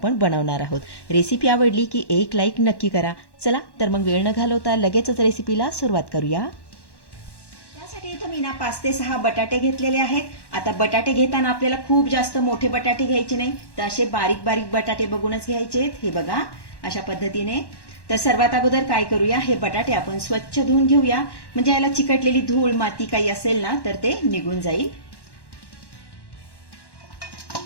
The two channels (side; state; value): right; late; 1.1 ms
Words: बनवणार आहोत. रेसिपी आवडली की एक लाईक नक्की करा. चला तर मग वेळ न घालवता लगेचच रेसिपीला सुरुवात करूया. त्यासाठी इथं मी ना 5 ते 6 बटाटे घेतलेले आहेत. आता बटाटे घेताना आपल्याला खूप जास्त मोठे बटाटे घ्यायचे नाही, तर असे बारीक बारीक बटाटे बघूनच घ्यायचे. हे बघा अशा पद्धतीने. तर सर्वात अगोदर काय करूया, हे बटाटे आपण स्वच्छ धुवून घेऊया, म्हणजे याला चिकटलेली धूळ माती काही असेल ना तर ते निघून जाईल.